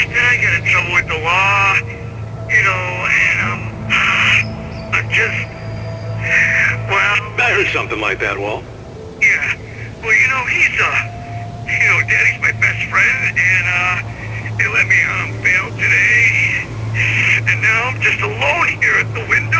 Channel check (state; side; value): identical; both; correlation 1.00